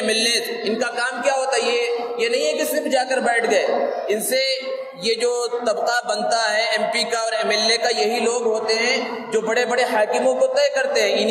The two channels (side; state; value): both; identical; correlation 1.00